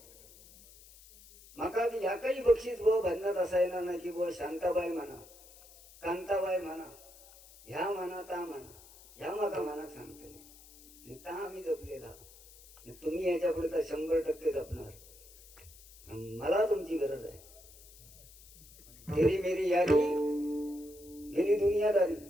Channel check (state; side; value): noise; left; hiss, 22 dB below the sound